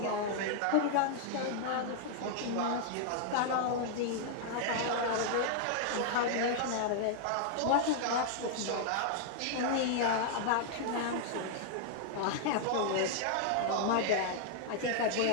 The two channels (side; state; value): both; different; correlation -0.01